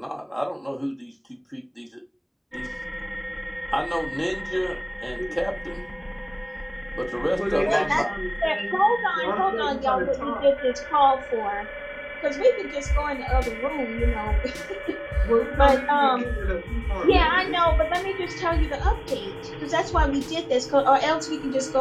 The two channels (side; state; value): both; identical; correlation 1.00